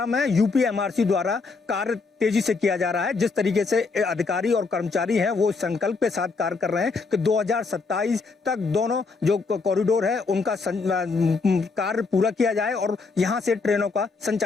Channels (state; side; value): quieter; right; 4.3 dB